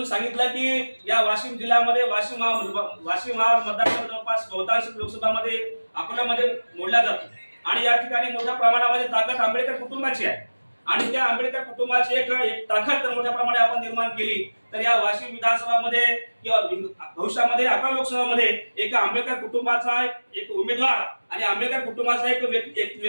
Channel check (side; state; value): both; inverted; correlation -1.00